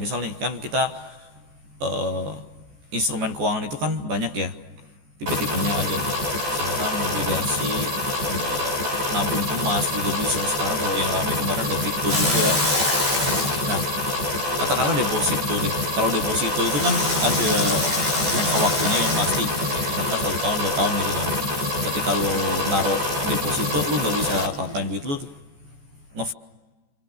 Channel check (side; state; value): left; late; 14 ms